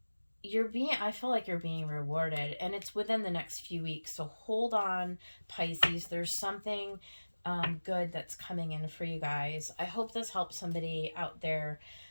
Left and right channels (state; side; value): inverted; both; correlation -1.00